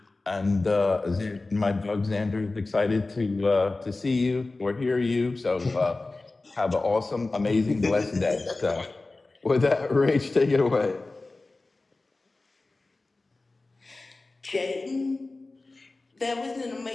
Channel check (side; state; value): right; quieter; 3.3 dB